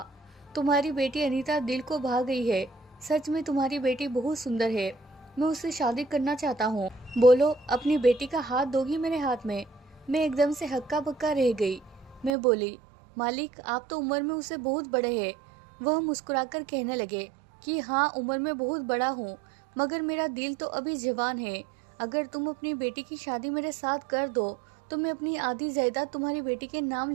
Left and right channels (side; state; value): left; drops out; at 12.4 s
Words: तुम्हारी बेटी अनीता दिल को भा गई है। सच में तुम्हारी बेटी बहुत सुंदर है। मैं उससे शादी करना चाहता हूँ। बोलो, अपनी बेटी का हाथ दोगी मेरे हाथ में? मैं एकदम से हक्का बक्का रह गई। मैं बोली, मालिक, आप तो उम्र में उससे बहुत बड़े हैं। वह मुस्कुराकर कहने लगे कि हाँ, उम्र में बहुत बड़ा हूँ, मगर मेरा दिल तो अभी जवान है। अगर तुम अपनी बेटी की शादी मेरे साथ कर दो तो मैं अपनी आधी जायदाद तुम्हारी बेटी के नाम